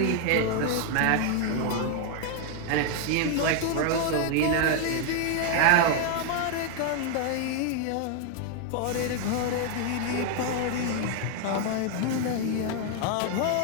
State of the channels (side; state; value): both; different; correlation 0.00